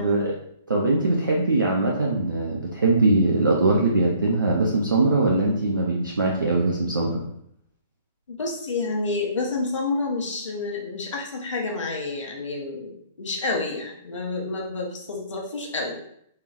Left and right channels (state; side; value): inverted; both; correlation -0.61